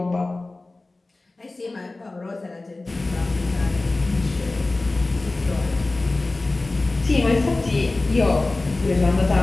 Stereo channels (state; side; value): quieter; right; 3.1 dB